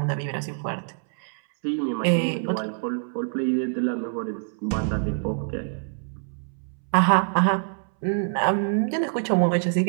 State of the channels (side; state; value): left; silent; 61 dB below the other